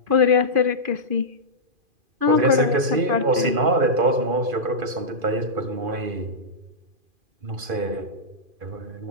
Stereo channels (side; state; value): left; late; 2.5 ms